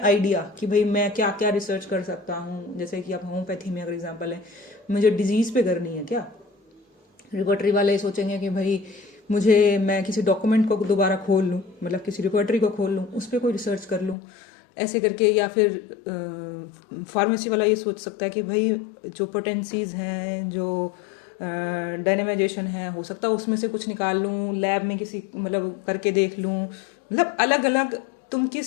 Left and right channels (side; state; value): right; drops out; at 14.2 s